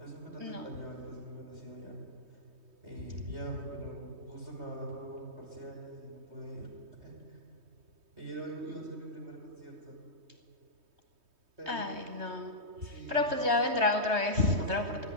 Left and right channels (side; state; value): left; late; 3.2 ms